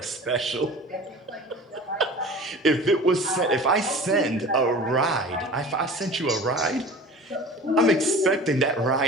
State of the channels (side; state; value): both; normal; correlation 0.39